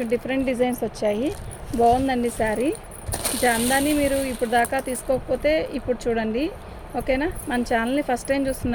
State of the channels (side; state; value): both; identical; correlation 1.00